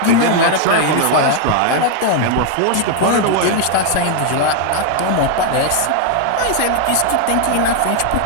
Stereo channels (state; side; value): different; both; correlation 0.00